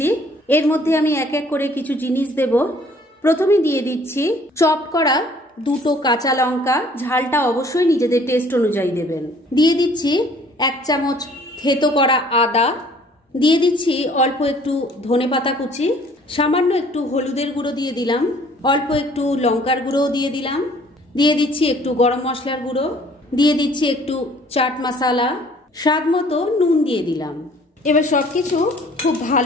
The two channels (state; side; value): normal; both; correlation 0.56